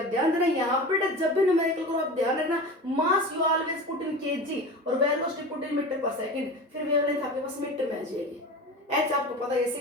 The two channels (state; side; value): normal; both; correlation 0.31